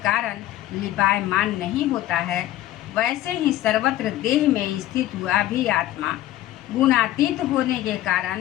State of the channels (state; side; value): quieter; right; 14.2 dB